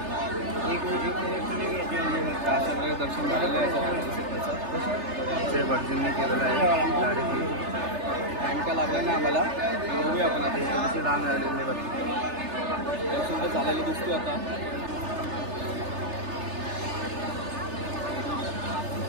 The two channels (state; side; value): late; left; 3.3 ms